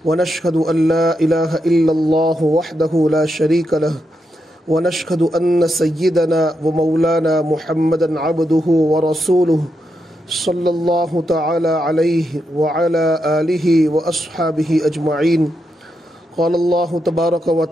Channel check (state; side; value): normal; both; correlation 0.84